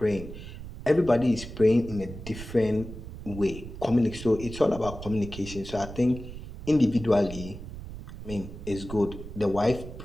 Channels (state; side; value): noise; right; rumble, 11 dB below the sound